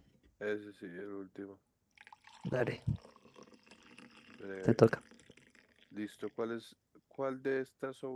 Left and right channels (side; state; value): both; identical; correlation 1.00